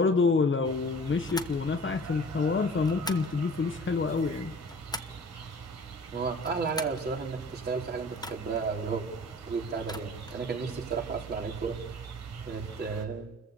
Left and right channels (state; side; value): normal; both; correlation 0.45